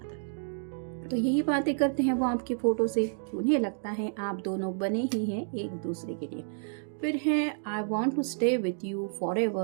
तो यही बातें करते हैं वो आपकी फ़ोटो से कि उन्हें लगता है आप दोनों बने ही हैं एक दूसरे के लिए। फिर है I want to stay with you फॉर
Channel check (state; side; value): silent; left; digital silence